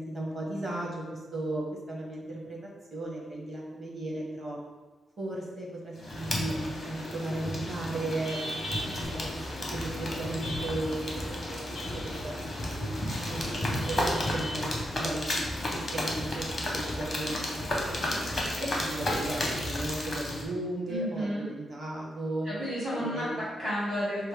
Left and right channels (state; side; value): normal; both; correlation 0.82